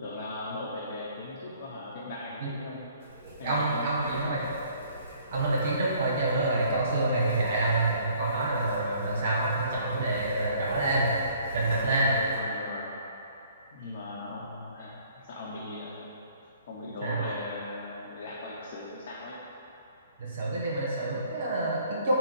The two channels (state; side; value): inverted; both; correlation -0.59